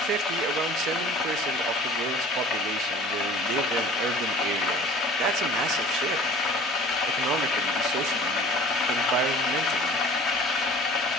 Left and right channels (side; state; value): both; normal; correlation 0.46